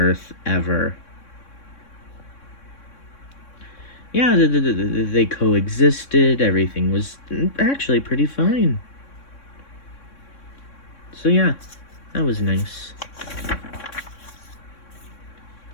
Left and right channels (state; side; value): late; right; 3.6 ms